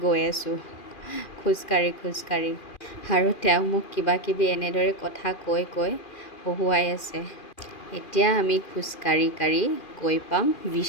গৈ আছোঁ খোজকাঢ়ি আৰু তেওঁ মোক কিবাকিবি এনেদৰে কথা কৈ হহুৱাই আছে। এতিয়া আমি খোজকাঢ়ি গৈ পাম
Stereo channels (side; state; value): right; late; 2.4 ms